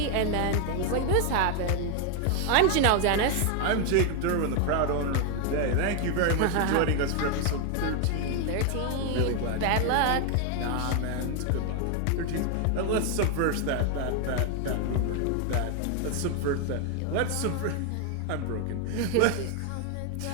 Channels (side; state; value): both; different; correlation 0.01